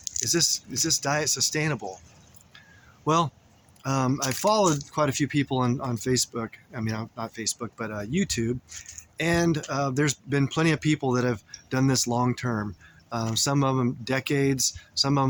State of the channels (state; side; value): identical; both; correlation 1.00